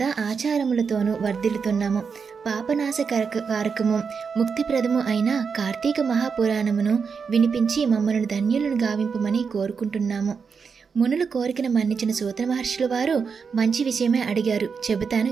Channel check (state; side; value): quieter; left; 5.7 dB